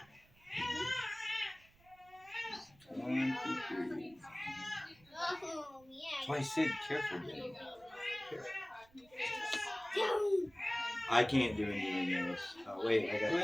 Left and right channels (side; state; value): right; noise; rumble, 28 dB below the sound